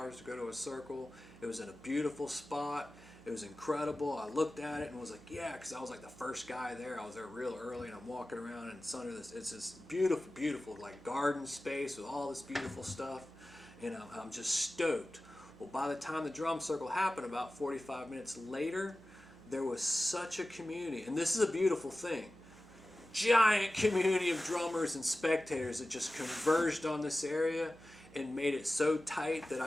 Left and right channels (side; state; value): both; normal; correlation 0.96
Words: to go to a circle. It was in a beautiful spot. It was incredible. I looked at it and was like, yeah, because I was like the first guy there. I was there real early, and I'm walking around, and it's under this, it's this beautiful, beautiful like garden space with all this beautiful stuff, and I'm just stoked. Well, by the time the drum circle happened, about 45 minutes later, there was such a community, and this is a beautiful thing. Giant community of drummers and spectators that just converged on this area and made it so tight that